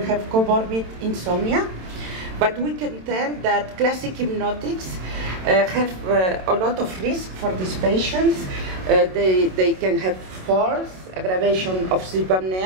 have comorbid insomnia. But we can tell that classic hypnotics have a lot of risk for these patients. They can have falls, aggravation of sleep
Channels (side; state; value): left; late; 27 ms